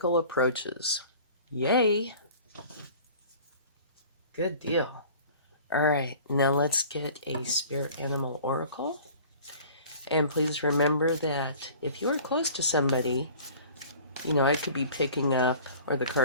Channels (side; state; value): both; inverted; correlation -0.46